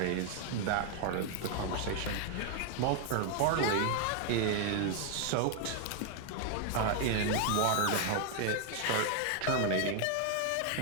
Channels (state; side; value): different; both; correlation 0.01